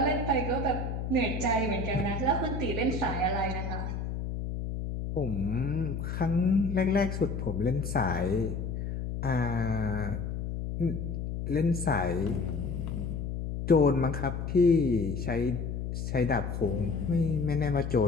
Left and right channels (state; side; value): noise; left; hum, 4 dB below the sound